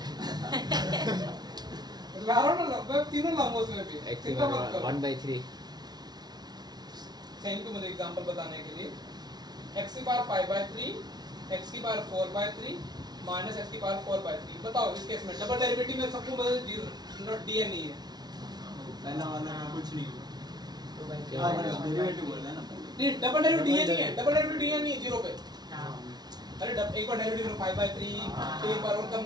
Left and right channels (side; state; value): left; late; 0.19 ms